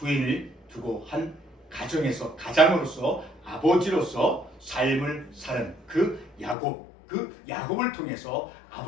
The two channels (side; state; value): right; drops out; at 6.6 s